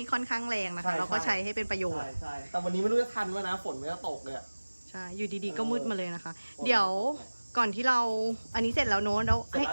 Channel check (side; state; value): both; inverted; correlation -1.00